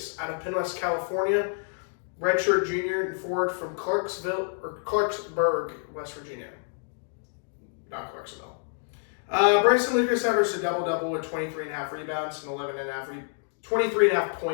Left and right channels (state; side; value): silent; right; 59 dB below the other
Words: out of Penn West, California, redshirt junior and forward from Clarksburg, West Virginia. Not Clarksville. Bryson Lucas averaged a double-double with 23.5 rebounds and 23.5